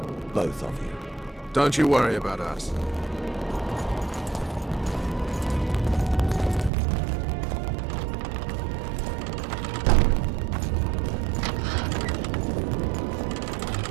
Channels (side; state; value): left; drops out; at 6.7 s